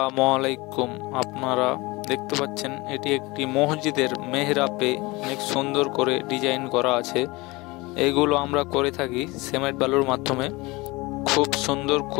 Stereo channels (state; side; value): quieter; right; 23.1 dB